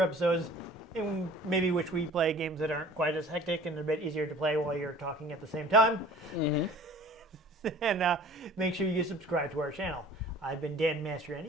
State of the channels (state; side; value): normal; both; correlation 0.48